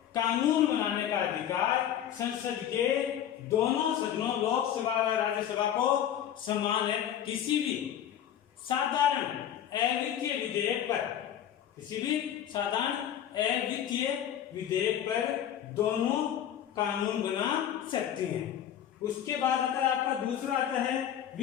कानून बनाने का अधिकार संसद के दोनों सदनों, लोकसभा व राज्यसभा को समान है। किसी भी साधारण अवित्तीय विधेयक पर, किसी भी साधारण अवित्तीय विधेयक पर दोनों कानून बना सकती हैं। उसके बाद आता है आपका दूसरा आता है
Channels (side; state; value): right; quieter; 10.3 dB